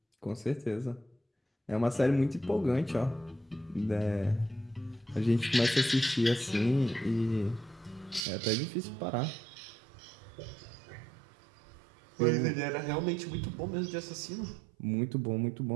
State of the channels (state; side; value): drops out; left; at 8.2 s